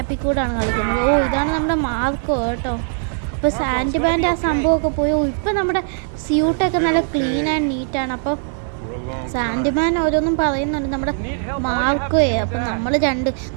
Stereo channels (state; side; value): silent; left; digital silence